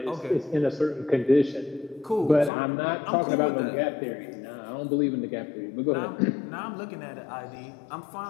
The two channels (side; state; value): right; drops out; at 2.5 s